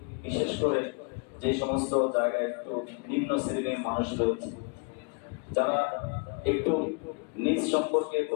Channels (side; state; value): right; quieter; 34.4 dB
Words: বিশেষ করে যে সমস্ত জায়গায় একটু নিম্ন শ্রেণীর মানুষ রয়েছে, যারা একটু নিজ সম্পর্কে,